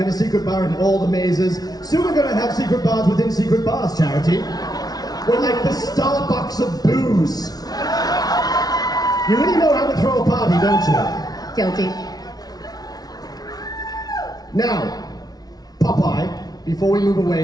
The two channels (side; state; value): right; late; 0.19 ms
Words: a secret bar in all the mazes. Soon we're gonna have secret bars within secret bars, Charity. We're like the Starbucks of booze. You really know how to throw a party, don't you? Guilty. Now, Popeye, before we move